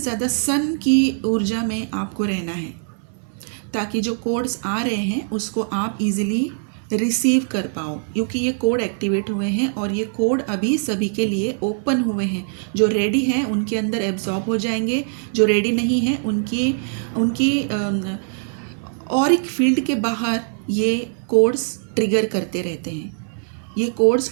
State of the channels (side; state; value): left; silent; digital silence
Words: सन की ऊर्जा में आपको रहना है, ताकि जो कोड्स आ रहे हैं उसको आप इजीली रिसीव कर पाओ, क्योंकि ये कोड एक्टिवेट हुए हैं और ये कोड अभी सभी के लिए ओपन हुए हैं। जो रेडी हैं उनके अंदर एब्जॉर्ब हो जाएंगे, जो रेडी नहीं हैं उनकी ऑरिक फील्ड के बाहर ये कोड्स ट्रिगर करते रहते हैं। ये